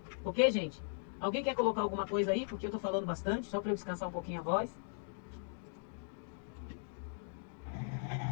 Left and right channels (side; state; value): right; silent; digital silence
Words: Ok, gente? Alguém quer colocar alguma coisa aí? Porque eu estou falando bastante, só para eu descansar um pouquinho a voz.